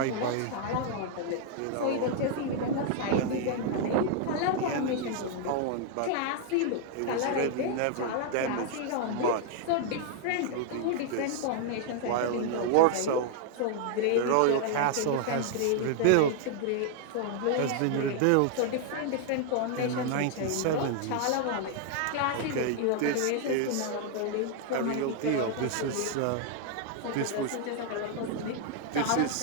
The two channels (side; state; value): both; different; correlation 0.00